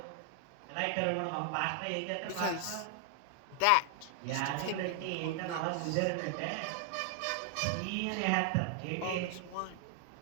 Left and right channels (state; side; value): different; both; correlation 0.00